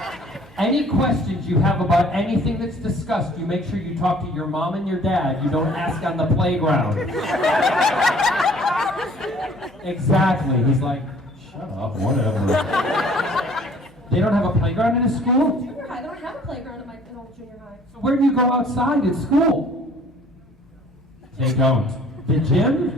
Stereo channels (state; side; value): normal; both; correlation 0.54